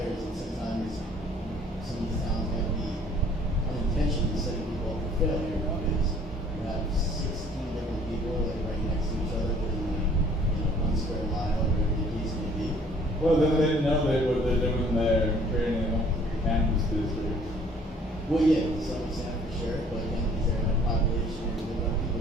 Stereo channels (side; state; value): both; normal; correlation 0.57